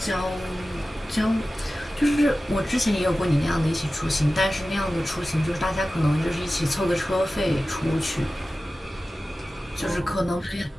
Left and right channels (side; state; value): both; normal; correlation 0.95